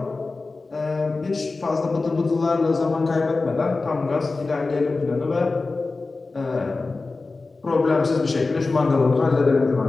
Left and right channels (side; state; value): right; quieter; 3.7 dB